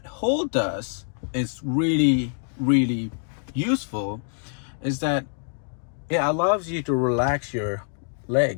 hold does is really useful, is that it allows you to relax your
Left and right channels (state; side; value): silent; right; digital silence